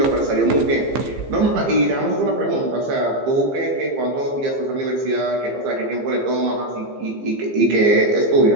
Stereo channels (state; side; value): late; left; 15 ms